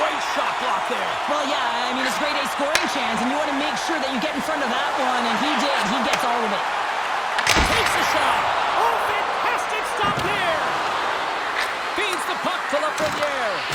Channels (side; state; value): both; identical; correlation 1.00